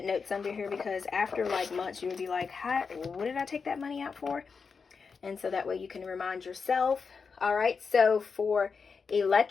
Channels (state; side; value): quieter; right; 5.3 dB